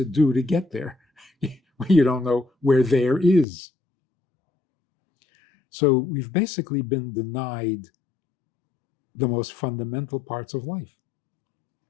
do to get there? You don't know where there is. So we've basically been denied the most fundamental parts of life.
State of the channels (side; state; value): right; drops out; at 3.5 s